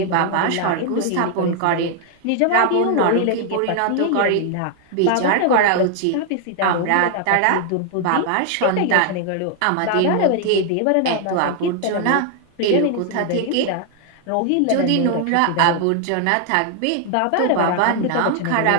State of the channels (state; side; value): different; both; correlation 0.00